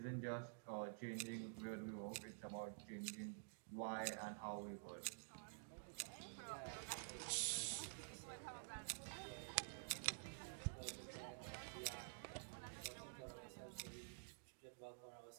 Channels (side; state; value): left; silent; digital silence